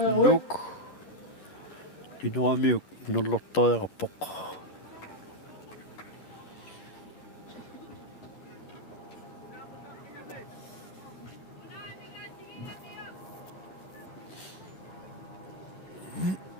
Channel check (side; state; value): right; late; 11 ms